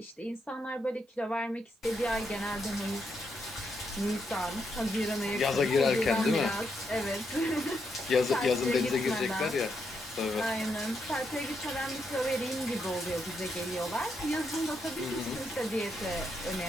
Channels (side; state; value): both; normal; correlation 0.80